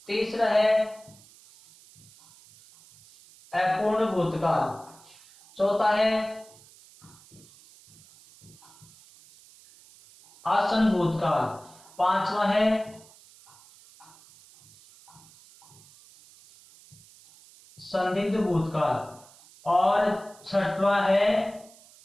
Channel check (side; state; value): right; noise; hiss, 25 dB below the sound